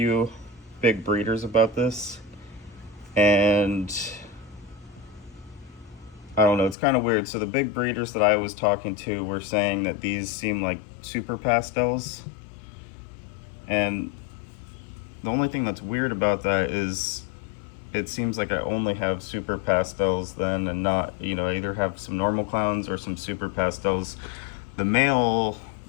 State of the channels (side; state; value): right; drops out; at 6.8 s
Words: big breeders about this, and I don't know, it's kind of weird. So the big breeders that I was talking to were saying that these seem like super pastels, and the only thing that's weird about that is it seems like I only have super pastels then, and not, you know, I either have some normal clowns or some super pastels. The male